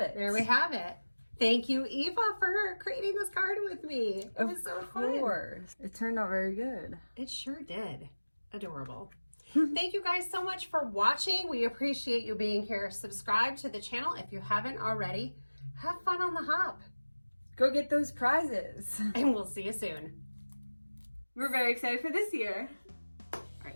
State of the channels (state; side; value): inverted; both; correlation -1.00